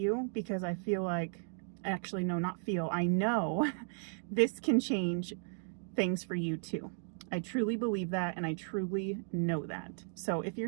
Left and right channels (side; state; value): left; silent; 54 dB below the other